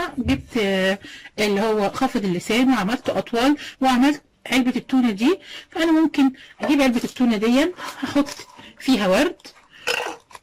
جبت اللي هو خافض اللسان وعملته اطول وعملت علبة التونة دي. فانا ممكن اجيب علبة التونة دي هحط فيها ورد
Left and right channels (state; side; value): identical; both; correlation 1.00